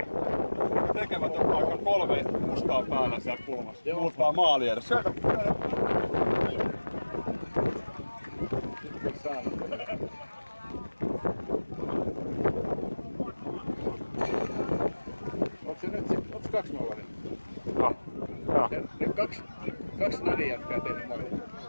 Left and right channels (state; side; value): inverted; both; correlation -1.00